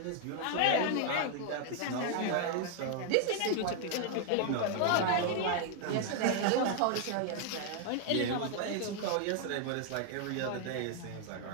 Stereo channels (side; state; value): both; different; correlation 0.00